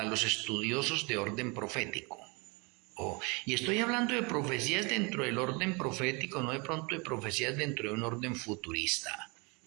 los estudiosos de orden profético. Y estoy hablando de profecías dentro del orden profético, no de pronto de profecías dentro de un orden futurista,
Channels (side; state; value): left; quieter; 29.6 dB